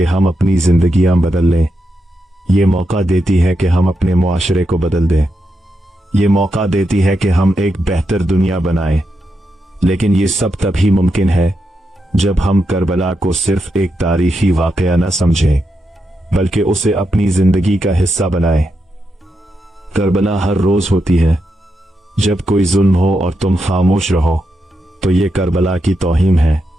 हम अपनी जिंदगियां बदल लें। ये मौका देती है कि हम अपने मुआशरे को बदल दें। ये मौका देती है कि हम एक बेहतर दुनिया बनाएं। लेकिन ये सब तभी मुमकिन है जब हम करबला को सिर्फ एक तारीखी वाकया न समझें, बल्कि उसे अपनी जिंदगी का हिस्सा बनाएं। करबला हर रोज होती है। जब कोई जुल्म हो और तुम खामोश रहो तो ये करबला की तौहीन है।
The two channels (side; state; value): both; normal; correlation 0.85